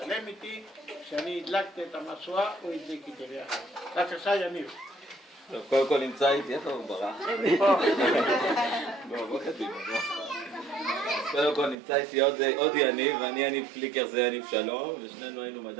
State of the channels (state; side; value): drops out; left; at 11.8 s